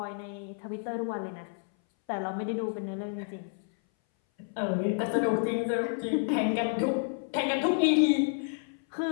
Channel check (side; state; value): right; silent; 58 dB below the other